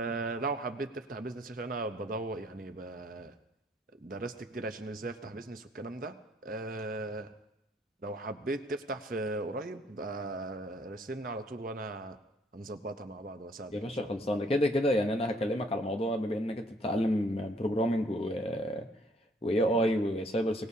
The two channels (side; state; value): both; normal; correlation 0.64